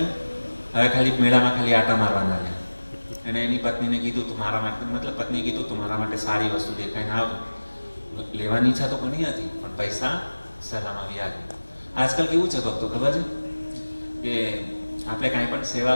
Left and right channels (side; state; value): both; inverted; correlation -1.00